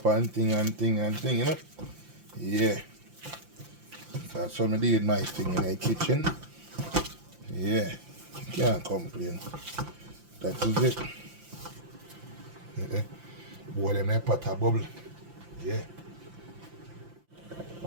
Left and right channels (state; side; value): late; left; 5.8 ms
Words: and thing, you know? Yeah. So that's how I did my thing in the kitchen. Yeah. Can't complain. That is it. Yeah. Boy, them there pot a bubble. Yeah.